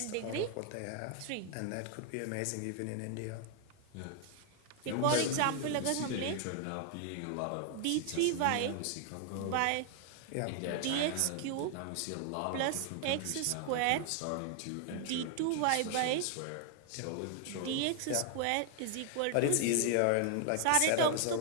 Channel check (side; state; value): both; different; correlation 0.00